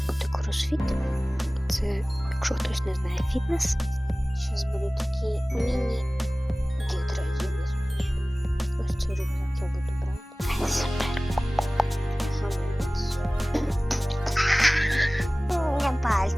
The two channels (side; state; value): both; normal; correlation 0.98